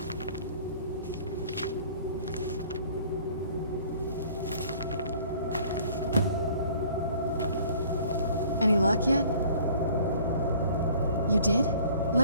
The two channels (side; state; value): both; inverted; correlation -0.53